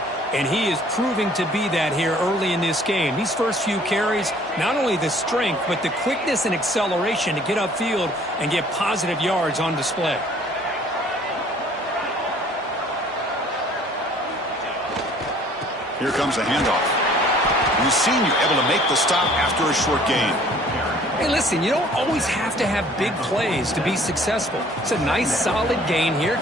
and he is proving to be that here early in this game. These first few carries, not only the strength, but the quickness and acceleration to get upfield and get positive yards on display. Here comes a handoff. The senior able to make the stop after a short gain. Hey, listen, you don't always have to have big plays to be successful. It's a nice, solid gain here.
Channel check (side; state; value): both; normal; correlation 0.55